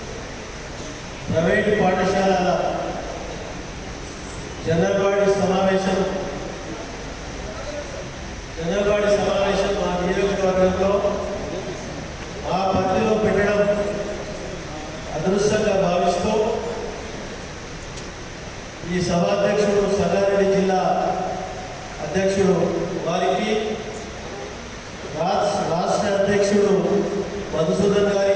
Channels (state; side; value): identical; both; correlation 1.00